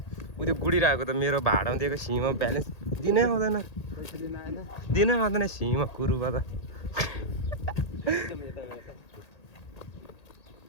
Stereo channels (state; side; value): late; right; 1.8 ms